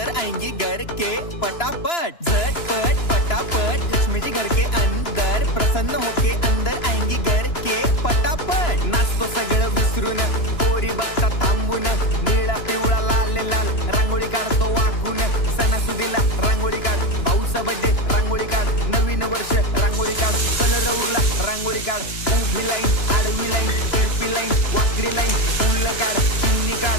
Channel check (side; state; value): right; late; 2.9 ms